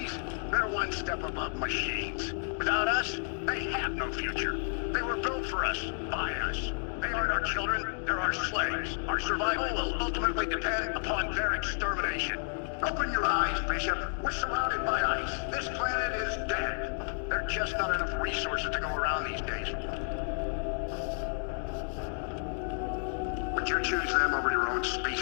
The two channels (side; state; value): right; silent; 57 dB below the other